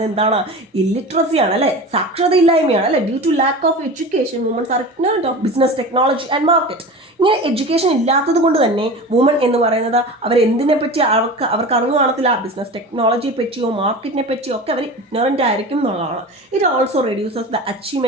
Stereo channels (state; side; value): normal; both; correlation 0.32